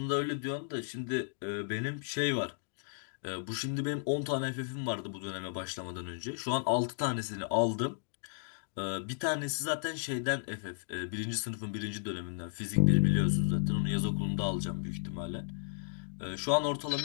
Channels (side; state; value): right; silent; digital silence